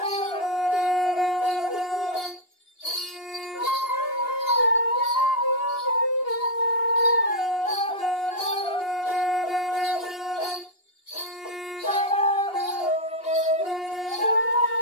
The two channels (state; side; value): late; right; 2.8 ms